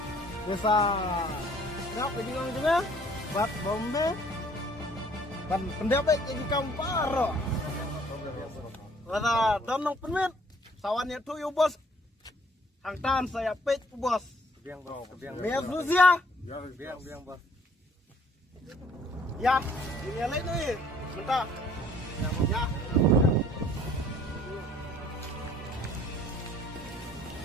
bisa nak pergi ngong juga. Bat bombe. Ban pendapat jadi kam paro. Wala don nong penmet. Sawannya tu yo bos. Hang tan saya pek bos. Kebiang bos, kebiang. Biar Rusia. Ya, kebiang bos. Ya, ini lain ni. Bentar. Ya.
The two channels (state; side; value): normal; both; correlation 0.59